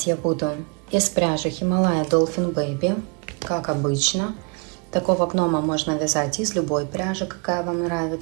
я буду из пряжи Himalaya Dolphin Baby, как обычно. Такого гнома можно вязать из любой пряжи, какая вам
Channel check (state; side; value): quieter; left; 35.4 dB